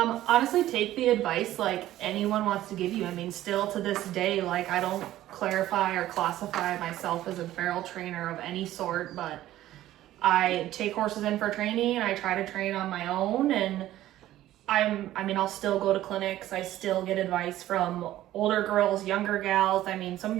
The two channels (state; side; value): quieter; left; 14.1 dB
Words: take the advice like anyone wants to give you. I mean, still to this day, like, I don't clarify or classify myself as a barrel trainer of any sort, but I take horses in for training and I try to train on my own, and I'll still go to clinics. I still get advice from older girls, younger gals. I mean, some of